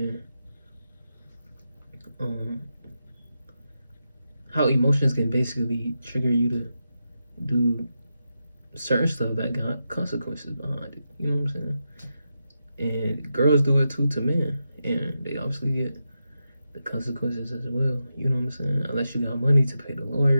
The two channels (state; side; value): inverted; both; correlation -0.88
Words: basically trigger you to do certain stuff that got consequences behind it. You know what I'm saying? And girls do it too to men, and they obviously get the consequences as well. You know what I'm saying? Unless you got money to pay the